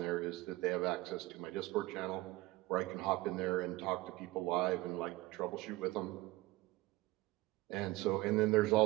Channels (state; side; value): quieter; left; 19.3 dB